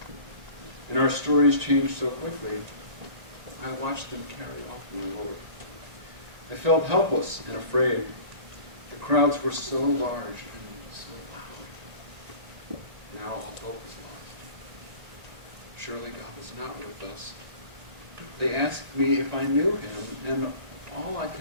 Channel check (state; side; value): late; left; 1.9 ms